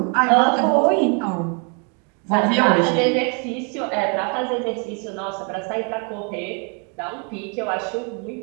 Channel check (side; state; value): left; quieter; 35.8 dB